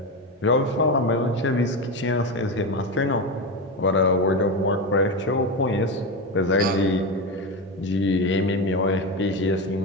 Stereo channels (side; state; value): both; normal; correlation 0.17